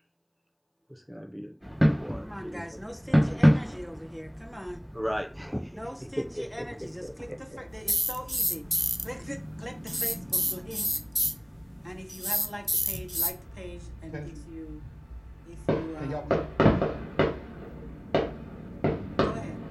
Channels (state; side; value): identical; both; correlation 1.00